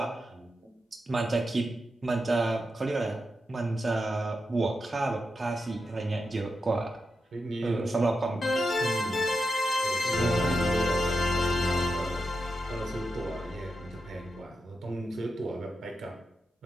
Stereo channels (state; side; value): normal; both; correlation 0.87